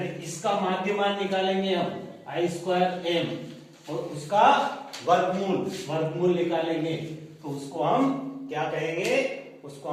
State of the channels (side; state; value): both; identical; correlation 1.00